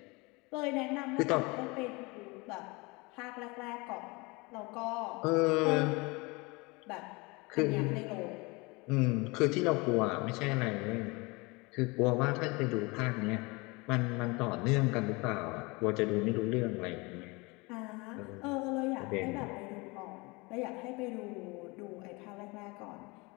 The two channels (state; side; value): quieter; right; 26.1 dB